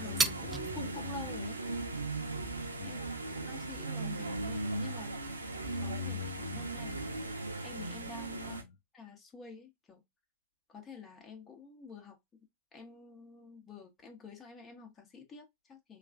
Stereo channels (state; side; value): inverted; both; correlation -0.33